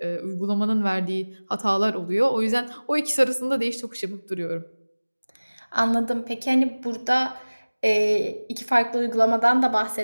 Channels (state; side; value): inverted; both; correlation -1.00